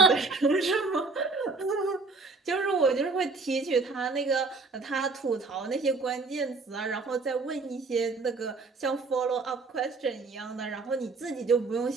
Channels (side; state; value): left; quieter; 4.0 dB